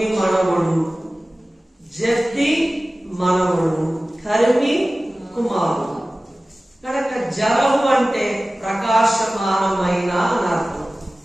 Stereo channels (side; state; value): both; normal; correlation 0.97